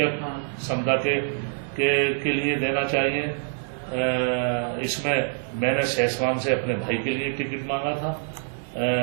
समुदाय के लिए देना चाहिए। इसमें मैंने सहसवान से अपने भाई के लिए टिकट मांगा था,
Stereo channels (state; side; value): silent; left; digital silence